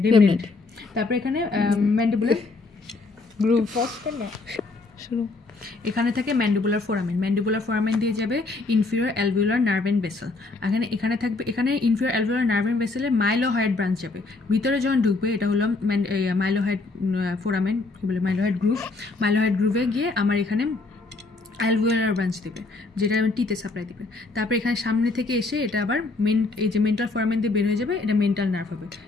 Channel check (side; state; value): right; quieter; 3.6 dB